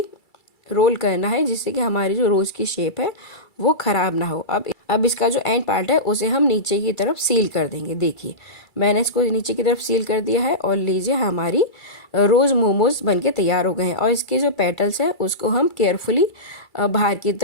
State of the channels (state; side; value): late; right; 2.3 ms